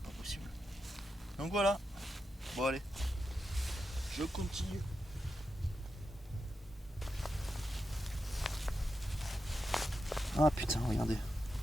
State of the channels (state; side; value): normal; both; correlation 0.88